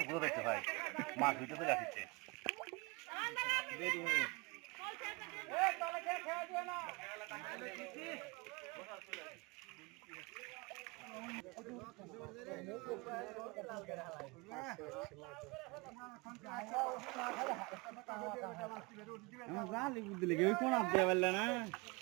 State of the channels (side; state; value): left; quieter; 27.6 dB